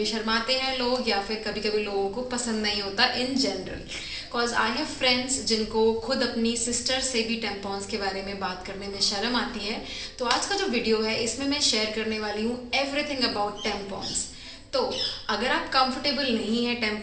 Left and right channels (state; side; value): identical; both; correlation 1.00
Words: शर्माते हैं लोग, या फिर कभी कभी लोगों को पसंद नहीं होता in general. Because I have friends जिनको खुद अपनी सिस्टर से भी टेम्पॉन्स के बारे में बात करने में शर्म आती है। तो आज का जो वीडियो है इसमें मैं शेयर करने वाली हूँ एवरीथिंग अबाउट टेम्पॉन्स। तो अगर आप कंफर्टेबल नहीं है